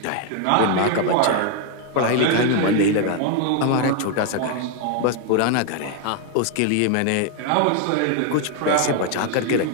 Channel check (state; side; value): different; both; correlation 0.01